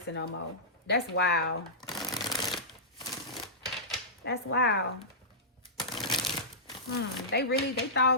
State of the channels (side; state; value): both; normal; correlation -0.17